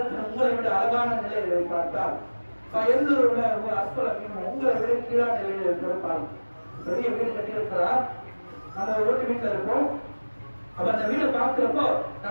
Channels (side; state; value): both; inverted; correlation -1.00